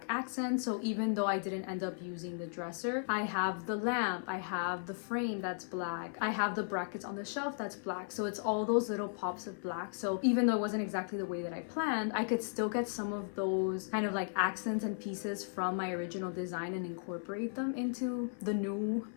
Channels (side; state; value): right; silent; digital silence